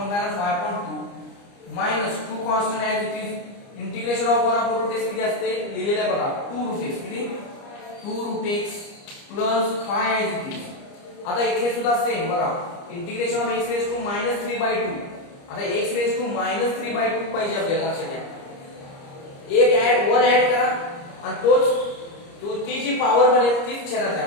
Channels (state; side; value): late; right; 29 ms